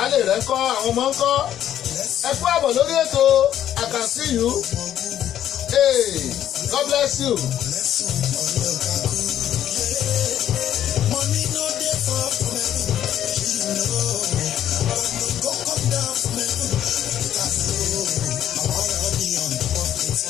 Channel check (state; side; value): quieter; right; 11.0 dB